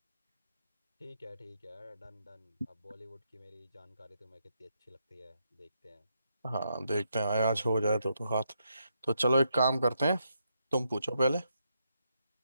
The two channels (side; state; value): both; inverted; correlation -0.80